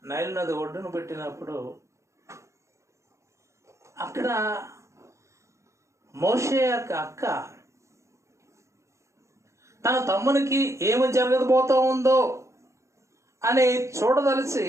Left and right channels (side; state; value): left; late; 0.14 ms